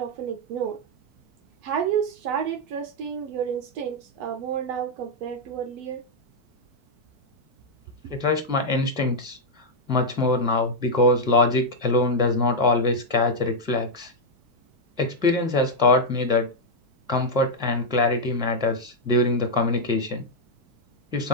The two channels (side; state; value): left; late; 4.5 ms